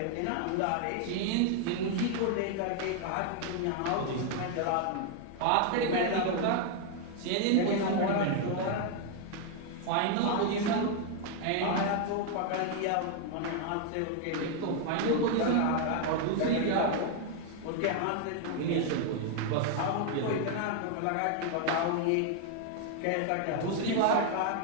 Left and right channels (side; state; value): both; different; correlation 0.00